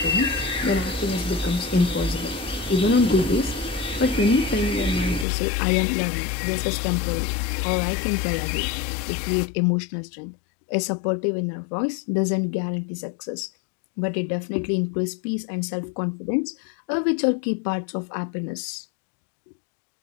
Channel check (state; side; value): drops out; right; at 5.2 s